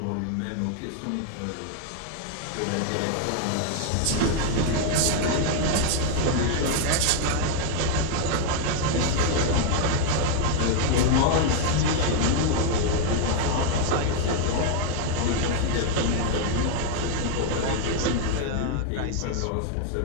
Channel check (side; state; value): both; different; correlation 0.00